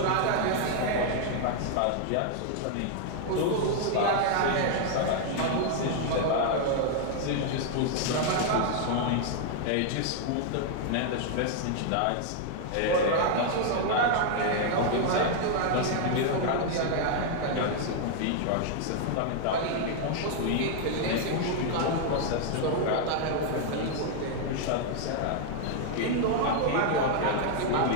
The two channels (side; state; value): both; different; correlation 0.00